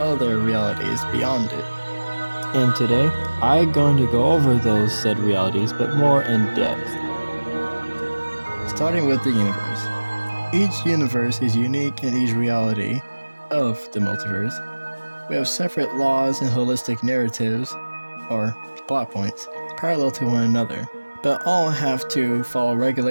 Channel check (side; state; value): both; inverted; correlation -1.00